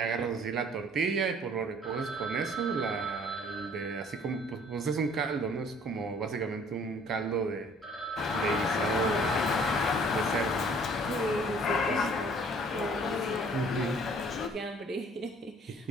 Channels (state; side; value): normal; both; correlation 0.55